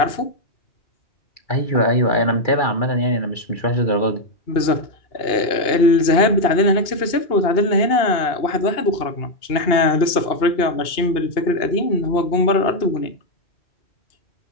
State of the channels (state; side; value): late; right; 2.8 ms